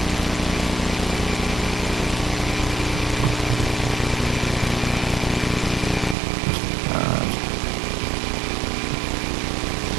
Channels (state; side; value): drops out; left; at 6.2 s